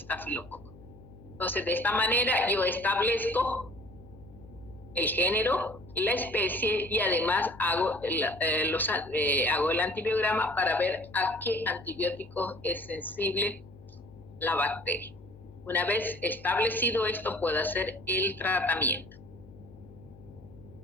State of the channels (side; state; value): left; noise; hum, 21 dB below the sound